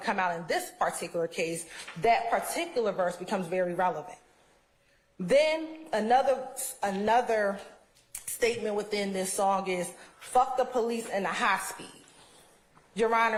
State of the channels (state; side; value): identical; both; correlation 1.00